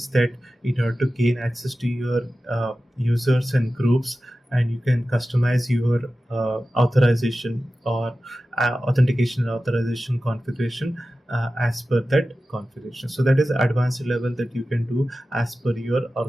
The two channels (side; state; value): both; normal; correlation 0.94